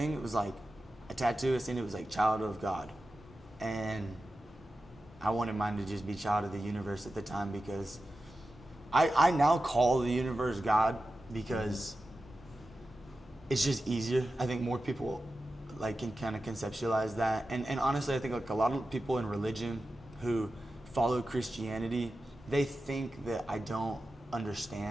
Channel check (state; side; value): normal; both; correlation 0.92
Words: it was like a tattoo, I seen it was like child of God. And I wanted mine to just be child of the universe at the time, because I now call the universe God because it's just easier. I think more people, like, can kind of conceptualize that. And honestly, I think, like, a lot of people in religion who follow Christianity, they think that I don't